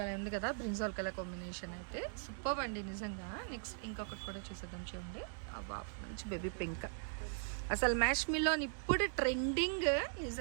ఉంది కదా బ్రింజాల్ కలర్ కాంబినేషన్ అయితే సూపర్ అండి నిజంగా. నెక్స్ట్ ఇంకొకటి కూడా చూసేద్దాం చూడండి. వావ్, మంచి బేబీ పింక్. అసలు మ్యాష్ మిలన్ ఇప్పుడు ట్రెండింగ్.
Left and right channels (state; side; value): silent; left; digital silence